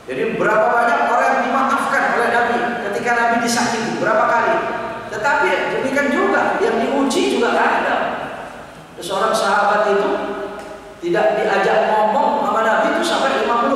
Jadi berapa banyak orang yang dimaafkan oleh Nabi ketika Nabi disakiti, berapa kali? Tetapi demikian juga yang diuji juga ada. Seorang sahabat itu tidak diajak ngomong sama Nabi itu sampai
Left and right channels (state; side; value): identical; both; correlation 1.00